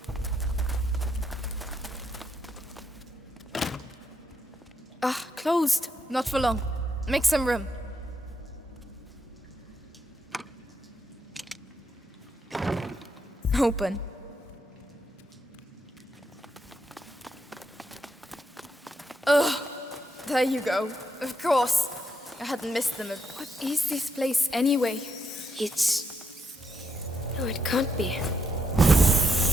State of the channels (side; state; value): both; normal; correlation 0.79